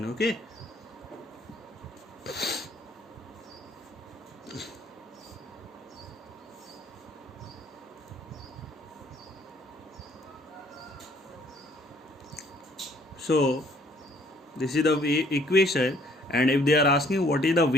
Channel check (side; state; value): both; normal; correlation 0.61